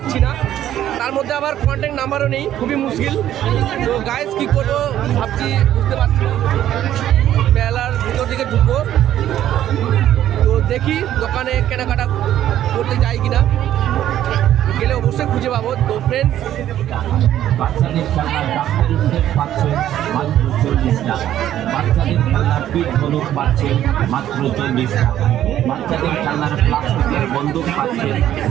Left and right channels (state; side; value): quieter; left; 11.9 dB